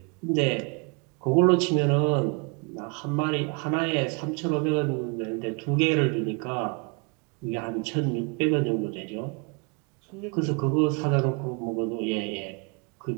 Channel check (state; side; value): quieter; left; 32.8 dB